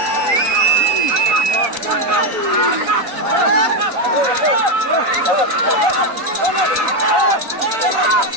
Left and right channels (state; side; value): late; left; 4.0 ms